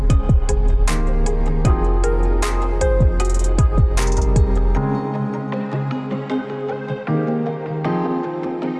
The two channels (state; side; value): identical; both; correlation 1.00